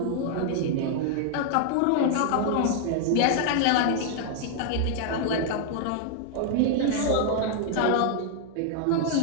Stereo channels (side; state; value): both; different; correlation 0.00